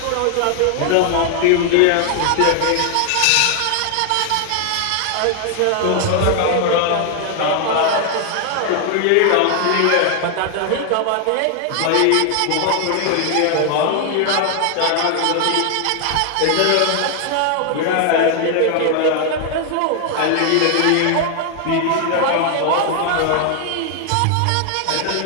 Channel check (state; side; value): different; both; correlation 0.00